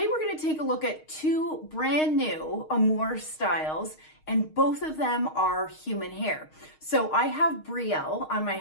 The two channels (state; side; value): late; right; 6.5 ms